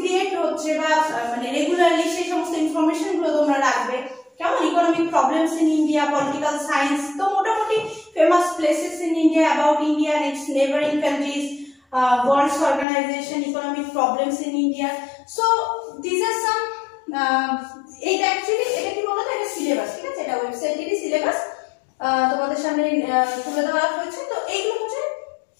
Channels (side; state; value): right; drops out; at 12.9 s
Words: হচ্ছে বা মানে রেগুলারলি সেই সমস্ত ইনফরমেশন গুলো তোমরা রাখবে, কেমন? Economic problems in India, political science, তো মোটামুটি famous places in India, about India and its neighboring countries, world organization, economic problems in India. So these are some এটা অ্যাকচুয়ালি এটা কি বলতো, এটা সিলেবাস, ঠিক আছে? এটা ওয়েবসাইটেরই সিলেবাস তোমাদের সামনে তুলে ধরা হয়েছে। তো এইগুলো হচ্ছে